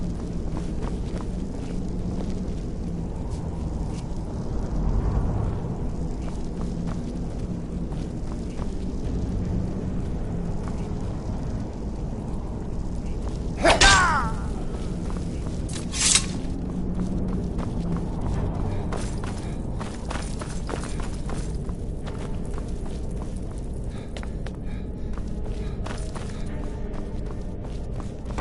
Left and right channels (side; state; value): both; identical; correlation 1.00